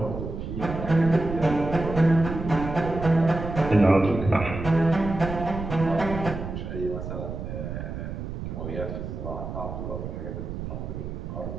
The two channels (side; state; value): right; noise; rumble, 7 dB below the sound